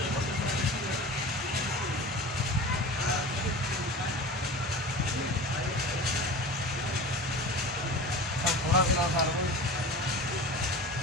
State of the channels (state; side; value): normal; both; correlation 0.34